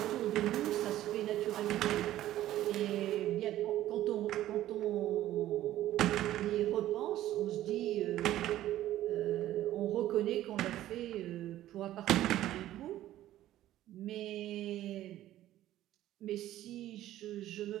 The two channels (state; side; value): quieter; left; 13.8 dB